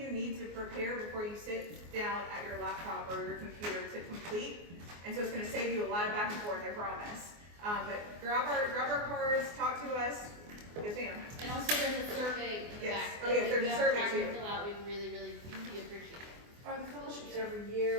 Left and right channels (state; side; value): late; left; 24 ms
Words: need to prepare before you sit down at your laptop or your computer to complete. And so it's going to save you a lot of back and forth, I promise. But grab our cards, talk to us. Yes, ma'am. And also there's a survey in the Yes. back. Oh, yeah, there's a survey If too. you have time to fill out, we'd really appreciate it. Are the fellowships every year